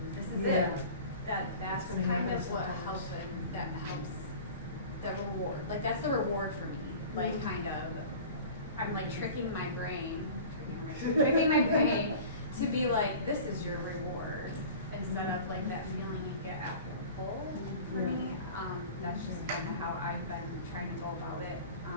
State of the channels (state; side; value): inverted; both; correlation -0.39